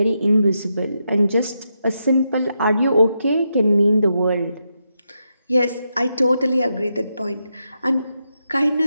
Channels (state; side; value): inverted; both; correlation -0.84